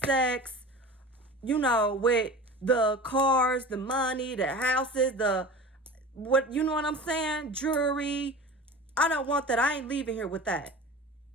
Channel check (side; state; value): both; normal; correlation 0.35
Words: with the cars, the money, the houses, you know what I'm saying? Jewelry. I don't want that. I ain't leaving here with that.